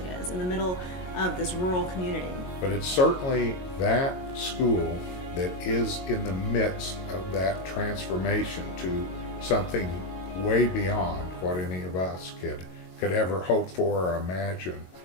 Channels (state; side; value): late; right; 22 ms